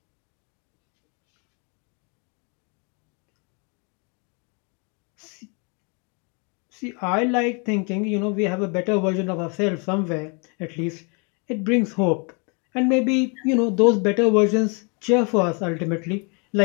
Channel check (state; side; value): quieter; right; 35.1 dB